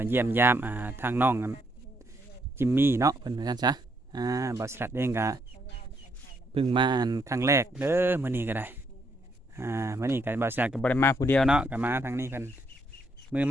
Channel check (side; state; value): both; normal; correlation 0.74